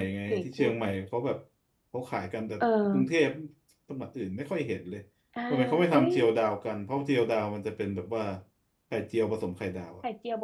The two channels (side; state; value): both; identical; correlation 1.00